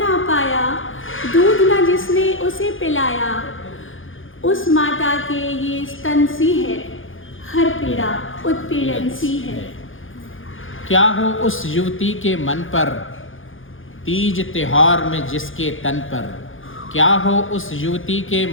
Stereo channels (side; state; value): right; late; 0.58 ms